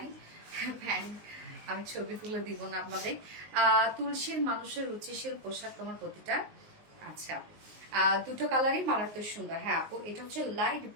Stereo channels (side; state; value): left; late; 19 ms